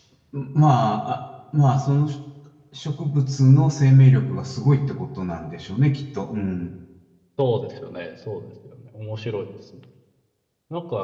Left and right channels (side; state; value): both; identical; correlation 1.00